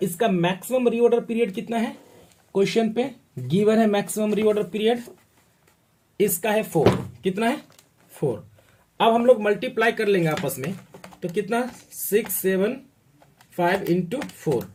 इसका मैक्सिमम रीऑर्डर पीरियड कितना है, क्वेश्चन पे गिवन है मैक्सिमम रीऑर्डर पीरियड, इसका है 4, कितना है 4। अब हम लोग मल्टीप्लाई कर लेंगे आपस में, तो कितना 675 इंटू 4,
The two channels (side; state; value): both; identical; correlation 1.00